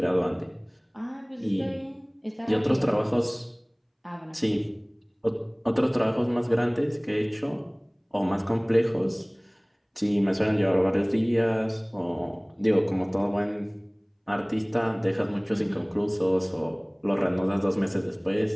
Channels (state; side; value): identical; both; correlation 1.00